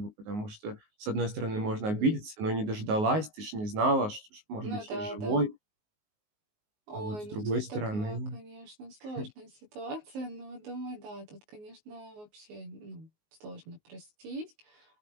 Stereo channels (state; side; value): late; left; 19 ms